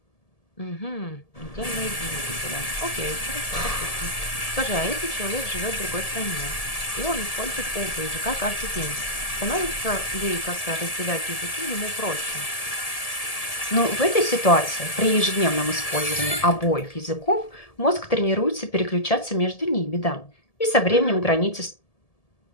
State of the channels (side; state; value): right; late; 1.7 ms